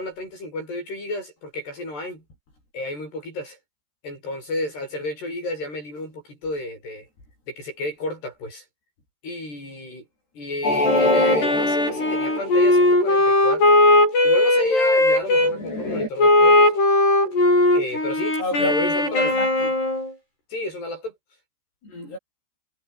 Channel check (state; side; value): late; right; 13 ms